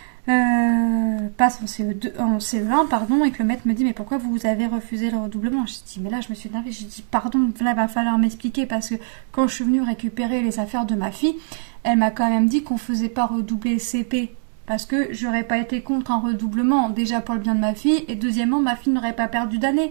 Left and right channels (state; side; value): silent; left; digital silence